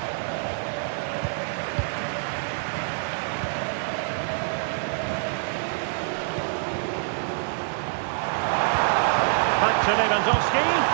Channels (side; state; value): left; silent; 61 dB below the other